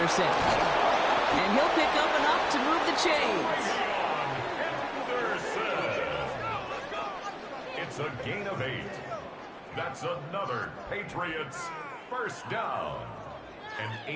And he'll pick up enough to move the chains. It's a gain of 8. That's another Patriots first down. An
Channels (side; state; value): both; identical; correlation 1.00